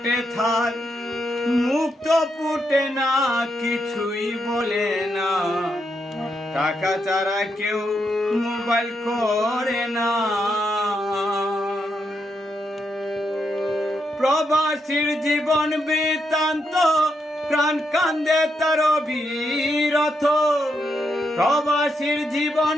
থার মুক্ত ফুটে না কিছুই বলে না টাকা ছাড়া কেউ মোবাইল করে না প্রবাসীর জীবন বৃত্তান্ত প্রাণ কান্দে তার অবিরথ প্রবাসীর জীবন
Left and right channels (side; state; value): both; normal; correlation 0.81